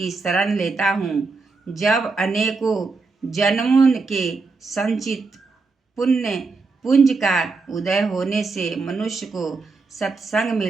शरण लेता हूँ। जब अनेकों जन्मों के संचित पुण्य पुंज का उदय होने से मनुष्य को सत्संग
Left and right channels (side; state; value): left; quieter; 4.0 dB